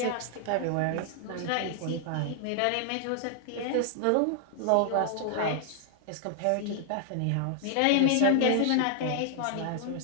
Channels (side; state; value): both; different; correlation 0.00